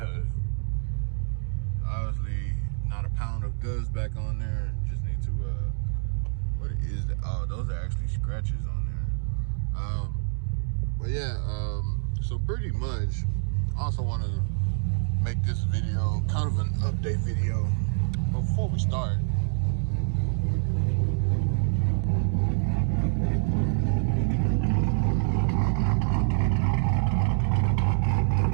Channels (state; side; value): silent; left; 60 dB below the other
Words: obviously not a pound of dust back on there. Just need to what is that? Oh, those are actually scratches on there. But yeah, so pretty much I also want to make this video kind of an update video. But before we start,